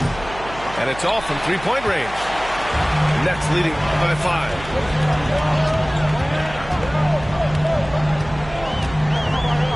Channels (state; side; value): noise; right; hum, 15 dB below the sound